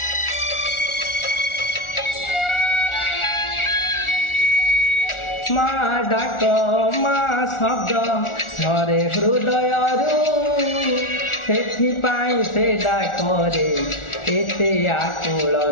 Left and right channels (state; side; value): late; right; 1.4 ms